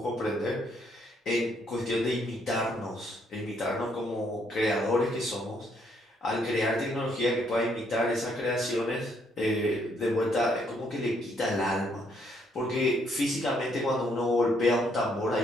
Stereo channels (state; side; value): normal; both; correlation 0.71